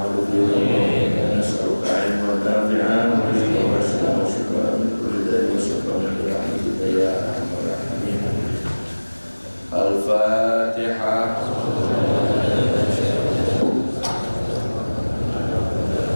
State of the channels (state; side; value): inverted; both; correlation -1.00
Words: 'azim wa nas'aluka 'ilman nafi'an wa rizqan wasi'an wa shifaan min kulli daa'in wa shifaan bi rahmatika ya arhamar rahimin. Al-Fatihah.